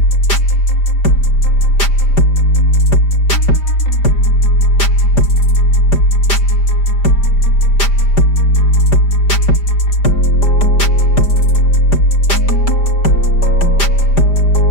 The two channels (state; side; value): late; right; 5.0 ms